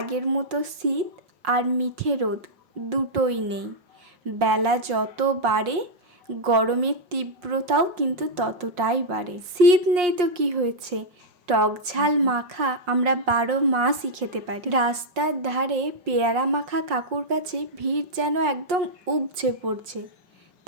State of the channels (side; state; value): left; late; 5.6 ms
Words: মতো শীত আর মিঠে রোদ দুটোই নেই। বেলা যত বাড়ে গরমের তীব্রতাও কিন্তু ততটাই বাড়ে। শীত নেই তো কি হয়েছে, টক ঝাল মাখা আমরা 12 মাসই খেতে পারি। রাস্তার ধারে পেয়ারা মাখা কাকুর কাছে ভিড় যেন একদম উপচে পড়ছে।